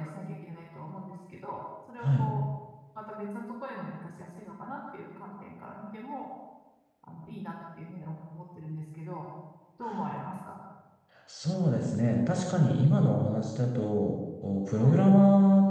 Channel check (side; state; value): both; identical; correlation 1.00